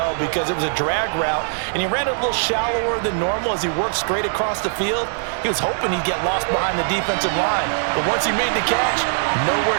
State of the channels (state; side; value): silent; left; digital silence